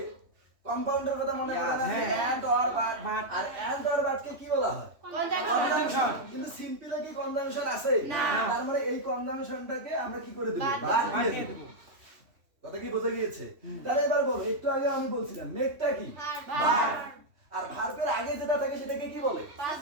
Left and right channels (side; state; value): left; late; 3.1 ms